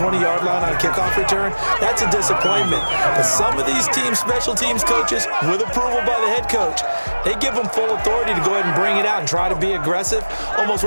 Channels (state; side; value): inverted; both; correlation -1.00